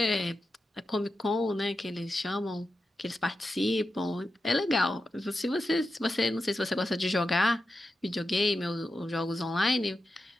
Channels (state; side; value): normal; both; correlation 0.90